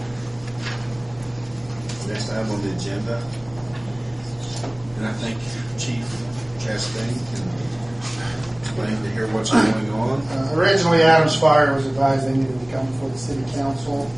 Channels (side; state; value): left; noise; hum, 28 dB below the sound